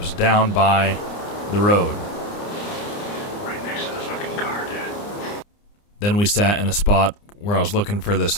down by the road. Right next to the fucking car, dude. Then we sat in a spot where I was looking for this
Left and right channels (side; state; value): right; late; 29 ms